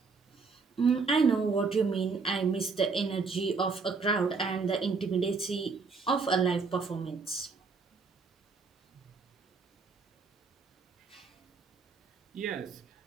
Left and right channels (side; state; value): left; quieter; 4.7 dB